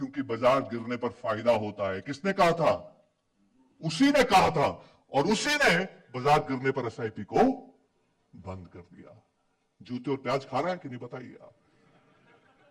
बाजार गिरने पर फायदा होता है। किसने कहा था? उसी ने कहा था, और उसी ने बाजार गिरने पर SIP को बंद कर दिया। जूते और प्याज खा रहा है कि नहीं बताइए आप?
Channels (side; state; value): both; identical; correlation 1.00